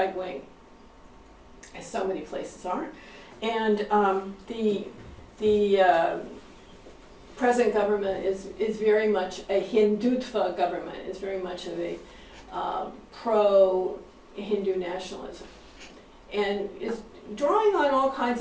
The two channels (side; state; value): both; identical; correlation 1.00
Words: wing, as so many places are. And the present government is very much a Hindutva government, is very much of a pro-Hindu nationalism, and is drawing on all kinds